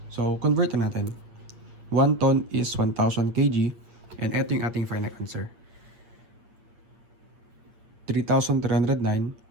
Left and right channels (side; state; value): left; late; 8.6 ms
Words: So, convert na natin. 1 ton is 1,000 kg. And ito yung ating final answer.